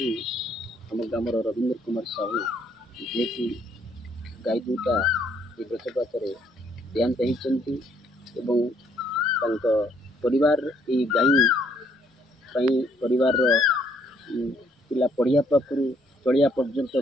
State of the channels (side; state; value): both; normal; correlation 0.67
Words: आम ग्राम रवींद्र कुमार साहू जी की गाई दुटा वज्रपात देहांत होती परिवार ये गाई परिवार पिला पढ़िया पाखु चलिया पर्यंत